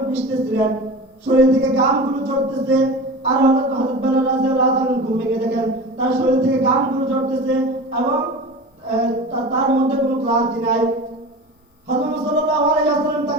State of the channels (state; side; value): normal; both; correlation 0.32